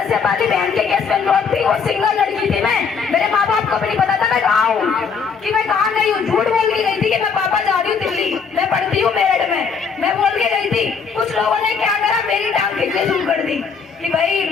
वाली बहन के केस में इन्वॉल्व थी, वो सिंगल लड़की थी, मैं मेरे माँ बाप को भी नहीं पता था मैं कहाँ हूँ, कि मैं कहाँ गई हूँ। झूठ बोल के गई थी कि मैं पापा जा रही हूँ दिल्ली, मैं पढ़ती हूँ मेरठ में, मैं बोल के गई थी। कुछ लोगों ने क्या करा, मेरी टांग खींचने शुरू कर दी कि भाई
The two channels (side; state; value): right; quieter; 5.8 dB